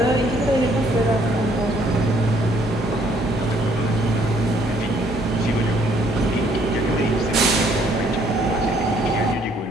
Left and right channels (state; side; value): normal; both; correlation 0.65